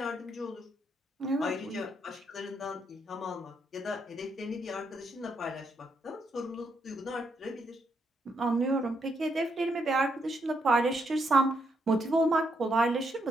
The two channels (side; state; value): both; normal; correlation 0.77